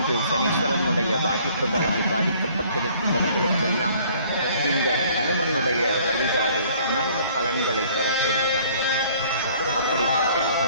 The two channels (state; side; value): inverted; both; correlation -0.56